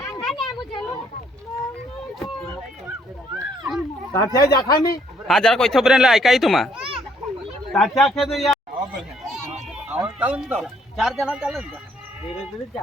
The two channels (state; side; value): normal; both; correlation 0.67